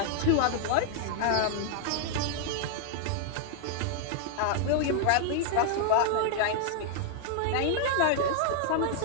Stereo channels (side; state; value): both; different; correlation 0.00